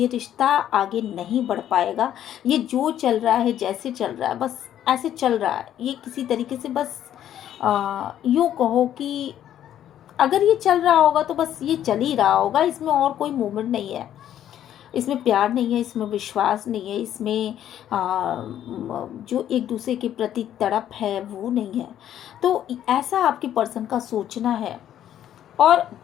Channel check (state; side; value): quieter; right; 11.0 dB